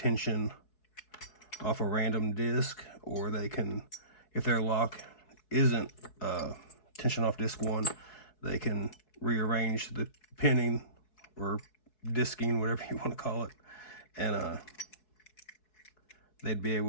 off a random disc, or they can, if their lock isn't tension off disc 1, they can rearrange the pinning or disking, whatever you want to call it, and they'd be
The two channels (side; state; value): right; late; 4.7 ms